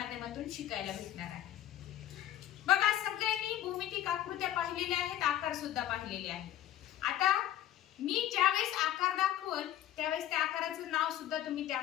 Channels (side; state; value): right; quieter; 12.3 dB